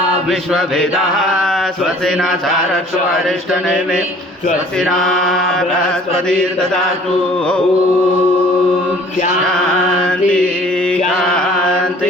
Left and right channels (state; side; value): normal; both; correlation 0.52